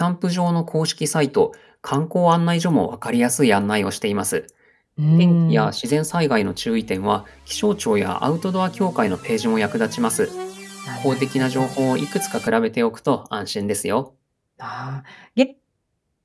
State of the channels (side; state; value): both; identical; correlation 1.00